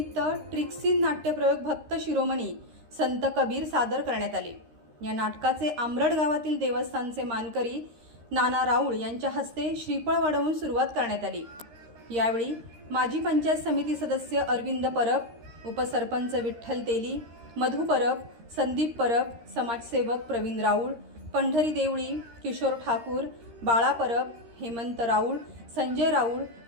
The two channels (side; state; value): left; late; 13 ms